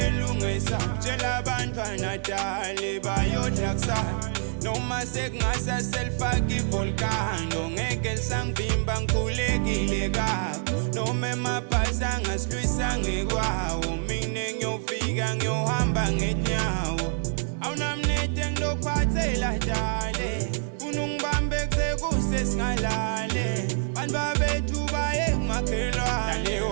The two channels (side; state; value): left; silent; digital silence